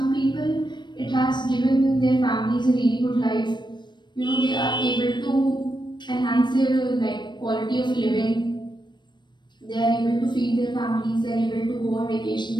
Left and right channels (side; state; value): right; late; 0.22 ms